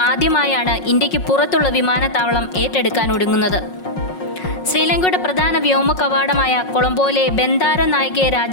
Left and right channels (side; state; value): right; late; 5.5 ms